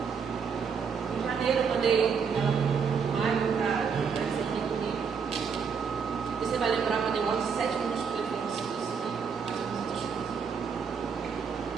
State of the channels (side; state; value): left; quieter; 6.2 dB